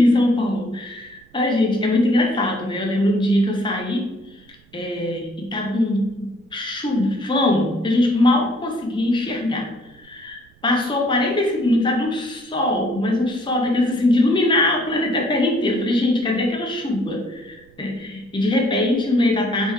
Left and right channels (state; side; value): noise; right; rumble, 30 dB below the sound